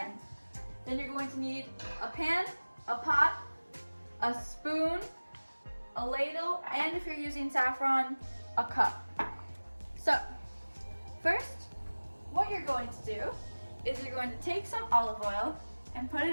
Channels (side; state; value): both; inverted; correlation -1.00